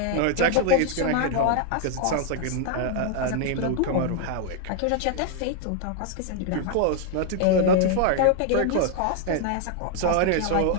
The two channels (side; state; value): both; different; correlation 0.00